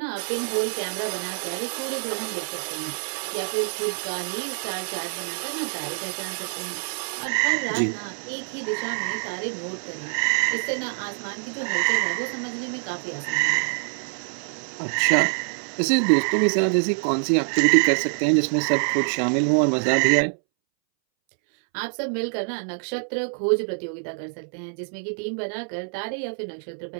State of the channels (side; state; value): left; silent; 62 dB below the other